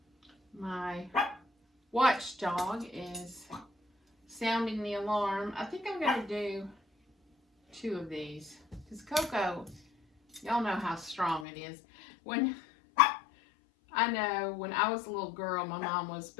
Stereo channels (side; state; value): right; drops out; at 11.5 s